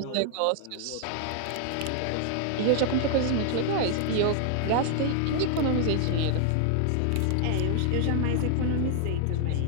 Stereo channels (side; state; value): both; different; correlation 0.00